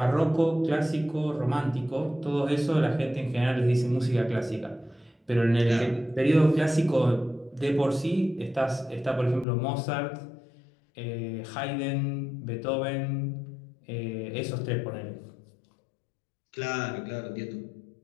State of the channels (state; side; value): drops out; right; at 9.5 s